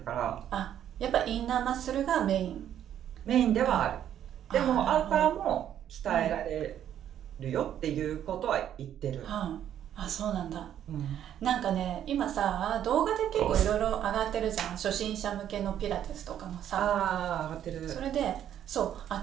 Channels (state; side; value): quieter; left; 10.4 dB